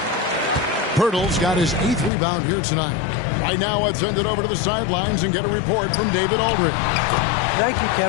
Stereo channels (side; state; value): right; drops out; at 2.1 s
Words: Pirtle's got his 8th rebound here tonight. Right now, let's send it over to the sidelines and get a report from David Aldridge. Thank you,